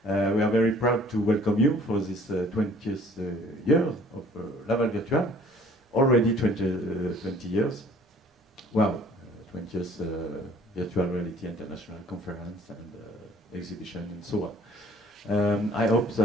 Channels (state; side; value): normal; both; correlation 0.55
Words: We are very proud to welcome you for this 20th year of Laval Virtual. Already 20 years. Wow, 20th Virtual Reality International Conference and exhibition and so on. I hope